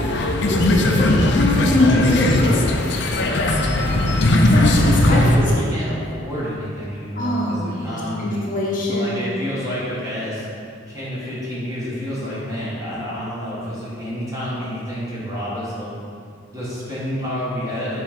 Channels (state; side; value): normal; both; correlation 0.67